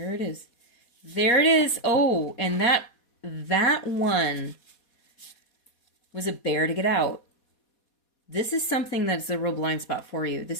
it is. There it is. Oh, and that one was a bear to get out. This is something that's a real blind spot for you.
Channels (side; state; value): right; late; 4.2 ms